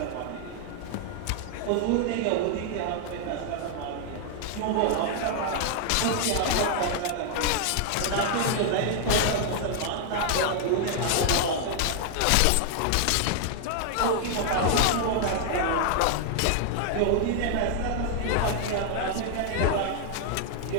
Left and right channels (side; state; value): both; different; correlation 0.00